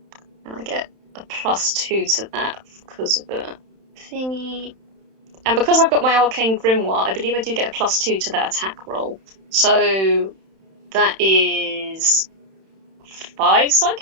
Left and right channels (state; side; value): late; left; 31 ms